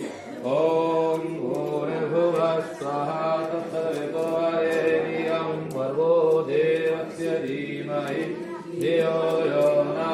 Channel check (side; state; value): both; identical; correlation 1.00